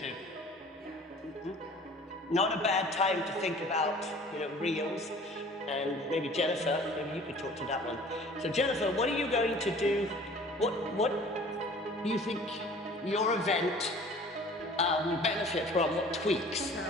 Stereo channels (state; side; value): normal; both; correlation 0.48